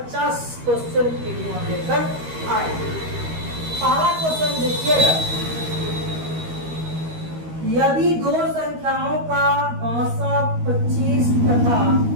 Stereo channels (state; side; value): late; left; 13 ms